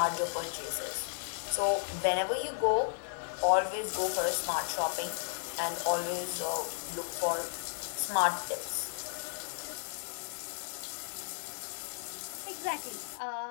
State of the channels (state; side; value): silent; right; digital silence